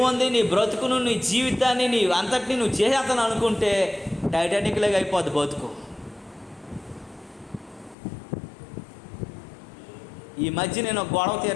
ఉంది, నీ బ్రతుకును, నీ జీవితాన్ని, నీ అంతటిని నువ్వు చేసేస్తాను అనుకుంటే టైటానిక్ లాగా అయిపోద్ది బతుకు. ఈ మధ్య నేను ఒక గొడవ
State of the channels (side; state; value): right; drops out; at 8.0 s